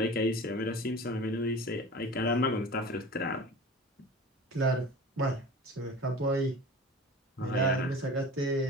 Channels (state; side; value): normal; both; correlation 0.38